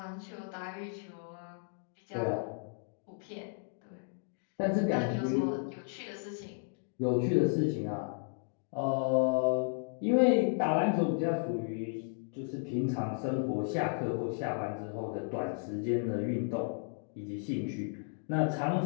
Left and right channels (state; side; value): silent; right; 55 dB below the other